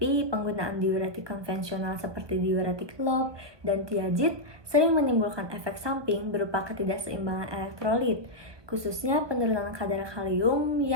penggunaan diuretik konvensional seperti diuretik lob dan tiazid sering menimbulkan efek samping berupa ketidakseimbangan elektrolit, khususnya penurunan kadar kalium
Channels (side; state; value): left; late; 1.2 ms